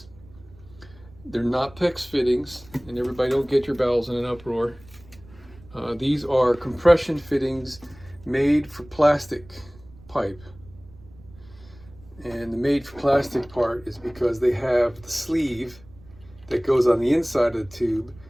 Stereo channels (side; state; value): right; noise; rumble, 23 dB below the sound